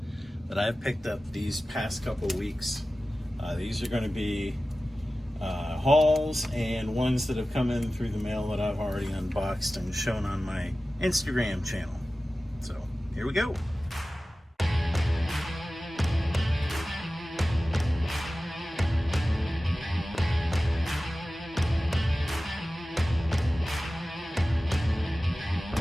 that I've picked up these past couple weeks. These are going to be hauls and ones that have come in through the mail that I've already unboxed and shown on my Instagram channel. So here we go.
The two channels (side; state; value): both; normal; correlation 0.96